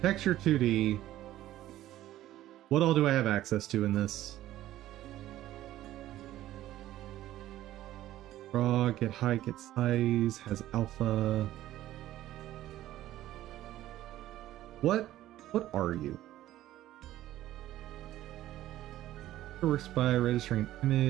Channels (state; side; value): quieter; left; 14.1 dB